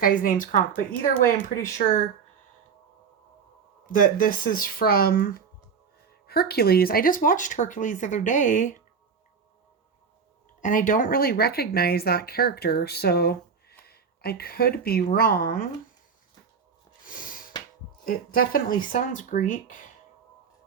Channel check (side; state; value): left; quieter; 6.1 dB